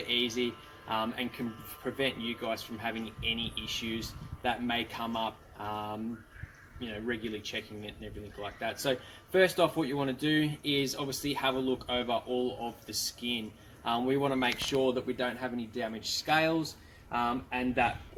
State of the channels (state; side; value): identical; both; correlation 1.00